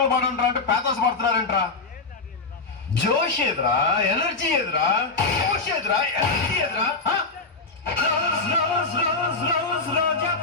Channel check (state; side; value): quieter; right; 3.9 dB